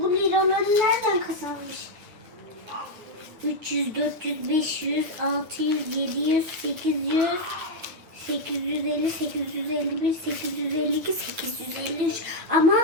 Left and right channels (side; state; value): left; late; 9.5 ms